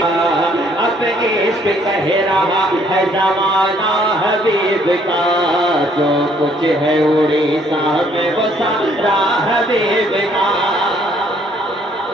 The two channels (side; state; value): both; normal; correlation 0.64